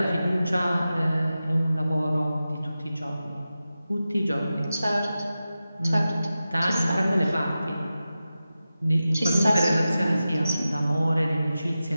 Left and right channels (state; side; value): inverted; both; correlation -0.93